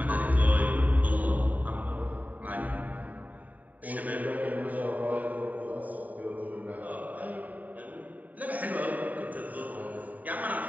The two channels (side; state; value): left; late; 0.076 ms